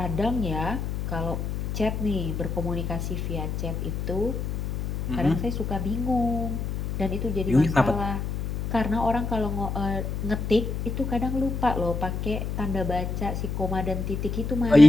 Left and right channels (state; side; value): noise; left; hum, 3 dB below the sound